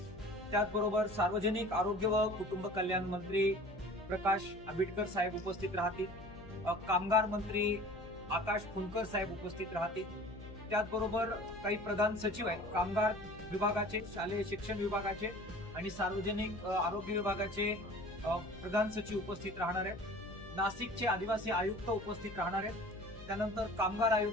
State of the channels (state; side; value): noise; left; hum, 17 dB below the sound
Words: त्याचबरोबर सार्वजनिक आरोग्य व कुटुंब कल्याण मंत्री प्रकाश आंबेडकर साहेब उपस्थित राहतील. कामगार मंत्री आकाश फुंकर साहेब उपस्थित राहतील. त्याचबरोबर काही प्रधान सचिव आहेत कामगार विभागाचे, शालेय शिक्षण विभागाचे आणि सार्वजनिक आरोग्य विभागाचे प्रधान सचिव उपस्थित राहणार आहेत. नाशिकचे आदिवासी आयुक्त उपस्थित राहणार आहेत. त्यानंतर कामगार